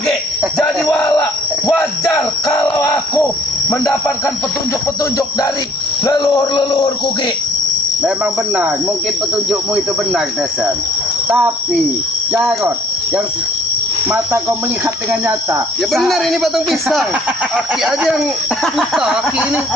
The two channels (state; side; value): normal; both; correlation 0.59